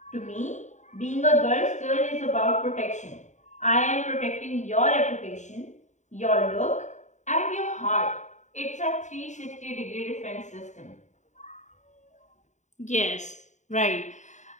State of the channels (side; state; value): right; late; 0.34 ms